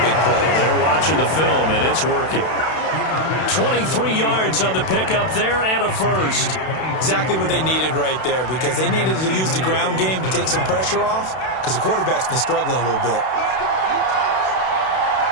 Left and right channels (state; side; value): late; right; 32 ms